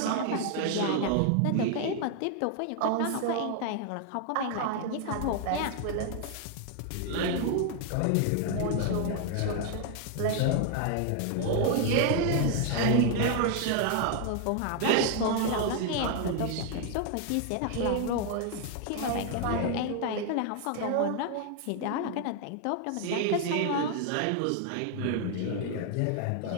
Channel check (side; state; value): both; different; correlation 0.00